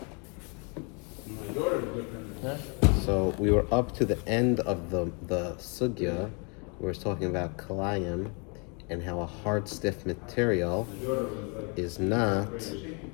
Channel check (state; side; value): quieter; right; 34.8 dB